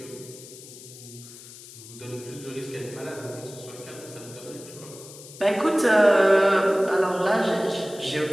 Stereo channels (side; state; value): left; noise; hiss, 17 dB below the sound